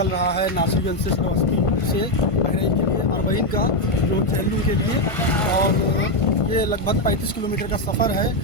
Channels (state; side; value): late; right; 1.5 ms